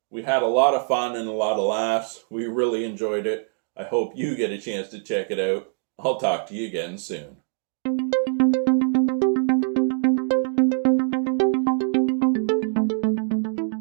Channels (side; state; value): left; silent; digital silence